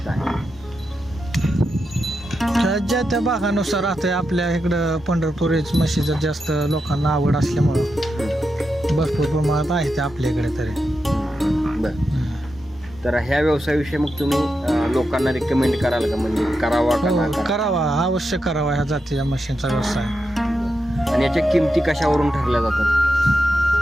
आहे? ज्या त्या भागानुसार राहते. आपल्या इकडं पंढरपुरीच म्हशीचं जास्त लोकांना आवड असल्यामुळं भरपूर प्रमाणात आहे ते आपल्या इकडे तरी. बरं, तर ह्या व्यवसायाविषयी मग तुम्ही लोकांना रिकमेंड कराल का, म्हणजे करावा का ना करावा? करावा, अवश्य करावा ह्या जातीच्या म्हशींचा व्यवसाय. आणि याच्या किमती कशावरून ठरल्या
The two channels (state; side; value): normal; both; correlation 0.87